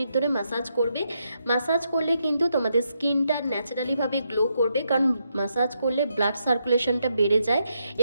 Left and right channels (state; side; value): inverted; both; correlation -0.80